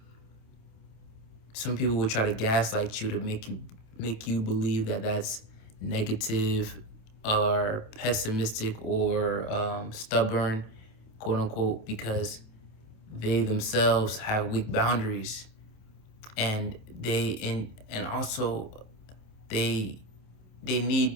Some people will try to gaslight you to make you believe that that's negative or pessimistic or stubborn, quote unquote, because they themselves have weak boundaries, and also they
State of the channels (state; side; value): late; right; 27 ms